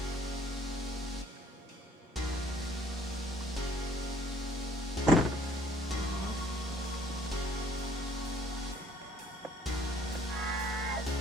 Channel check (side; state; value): both; normal; correlation 0.60